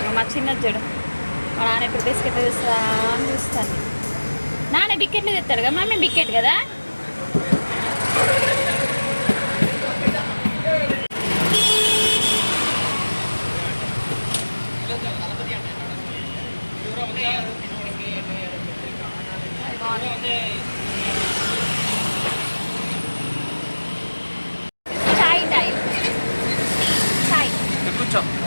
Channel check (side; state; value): both; inverted; correlation -1.00